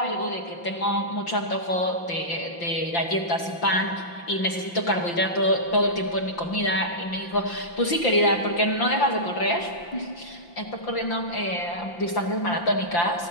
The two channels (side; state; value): right; late; 5.8 ms